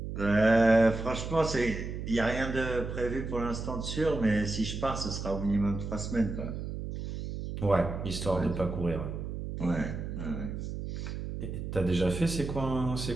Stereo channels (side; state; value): right; noise; hum, 6 dB below the sound